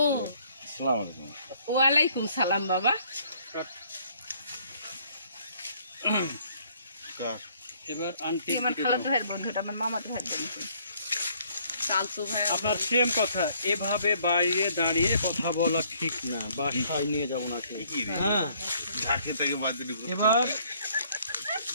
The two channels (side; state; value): both; inverted; correlation -0.63